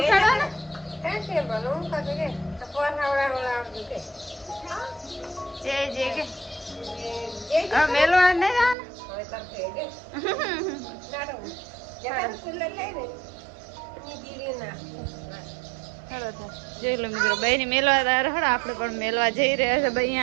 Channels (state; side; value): drops out; left; at 8.8 s